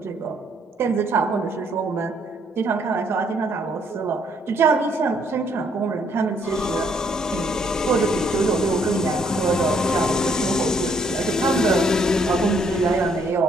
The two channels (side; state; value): both; normal; correlation 0.68